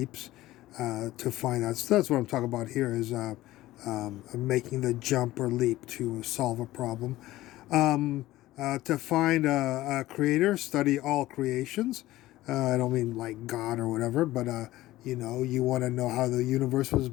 to find out. So that's what I'm talking about here, is making the jump or leap to solve a problem. To find a creator, study all creations. I don't mean like God or whatever, but you want to know how the universe was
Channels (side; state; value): right; quieter; 16.5 dB